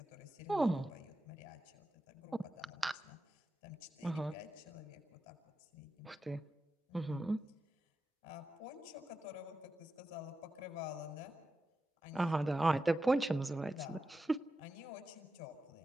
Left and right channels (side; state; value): both; normal; correlation 0.90